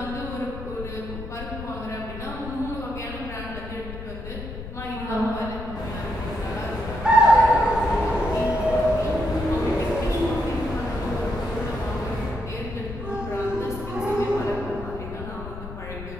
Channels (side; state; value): left; noise; rumble, 10 dB below the sound